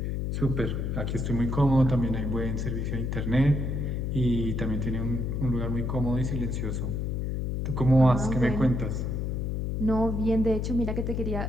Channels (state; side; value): noise; left; hum, 1 dB below the sound